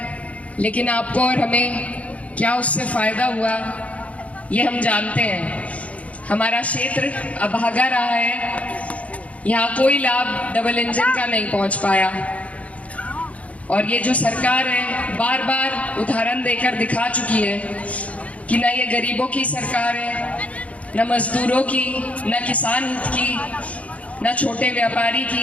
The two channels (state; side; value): late; right; 0.066 ms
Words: लेकिन आपको और हमें क्या उससे फायदा हुआ ये हम जानते हैं। हमारा क्षेत्र अभागा रहा है, यहाँ कोई लाभ डबल इंजन का नहीं पहुंच पाया, और ये जो सरकार है बार बार उदाहरण देकर दिखा चुकी है कि ना ये गरीबों की सरकार है, न मजदूरों की, न किसान हित की, न छोटे व्यापारी